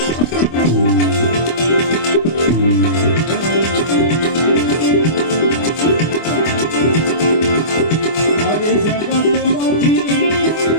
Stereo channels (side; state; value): right; late; 24 ms